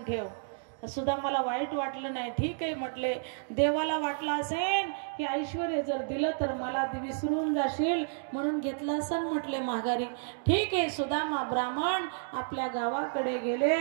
ठेव. सुद्धा मला वाईट वाटलं नाही. ठीक आहे म्हटले, देवाला वाटलं असेल की ऐश्वर्य जर दिलं तर मला विसरून जाशील म्हणून घेतलं असेल म्हटले माघारी. ठीक आहे. सुदामा ब्राह्मण आपल्या गावाकडे गेले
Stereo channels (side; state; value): left; silent; digital silence